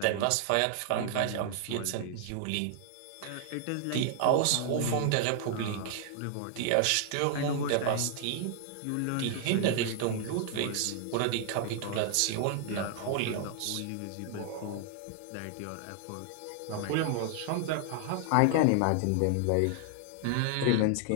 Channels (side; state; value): both; different; correlation 0.00